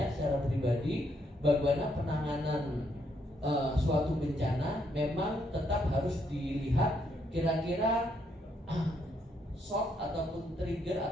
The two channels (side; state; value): both; normal; correlation 0.74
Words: secara pribadi, bagaimana penanganan suatu bencana memang tetap harus dilihat kira-kira shock ataupun trigger